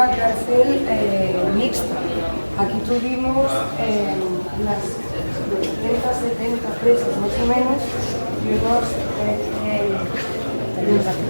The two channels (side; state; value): both; inverted; correlation -1.00